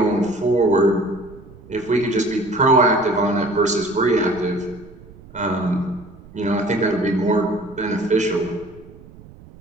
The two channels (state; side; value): noise; right; rumble, 21 dB below the sound